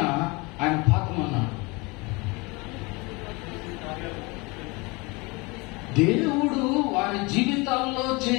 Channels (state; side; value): quieter; right; 26.5 dB